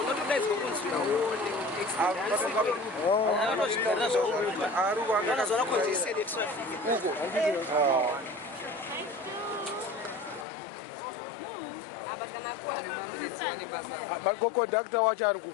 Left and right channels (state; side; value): drops out; right; at 10.5 s